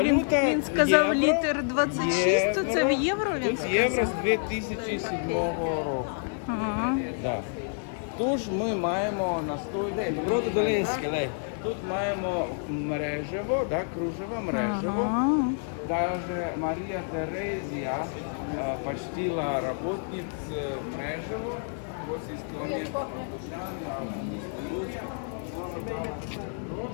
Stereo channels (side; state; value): right; silent; 59 dB below the other